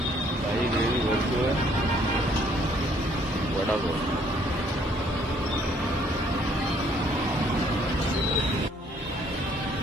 काही ग्रेव्ही भरतोय. वडापाव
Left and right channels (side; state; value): both; normal; correlation 0.64